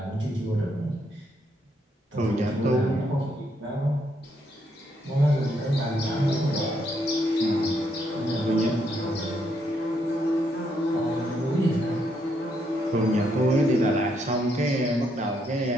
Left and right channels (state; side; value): normal; both; correlation 0.75